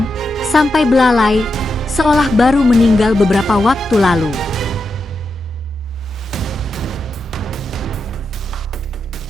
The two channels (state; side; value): normal; both; correlation 0.87